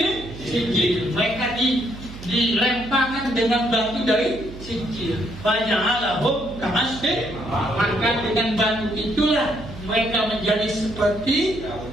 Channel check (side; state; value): right; noise; hum, 14 dB below the sound